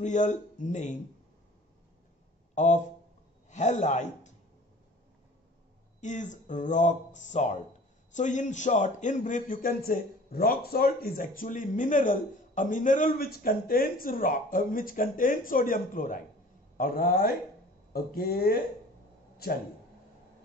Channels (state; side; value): normal; both; correlation 0.47